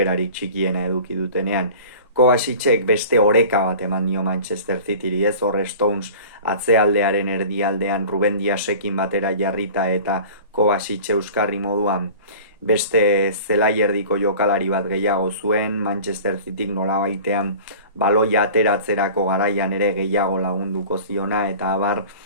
txikiena eduki dutenean. Kovacicek beste oreka bat eman dio Manchester Cityri, ez hor Stones atzealdearen erdialdean Ruben Diasekin batera jarrita, eta Kovacic euskarri moduan beste zelaierdiko jokalari bat gehiago zuen, Manchester Cityk nolabaitean baloia ateratzerako garaian ere gehiago lagunduko ziona, eta abar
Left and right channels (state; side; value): inverted; both; correlation -0.41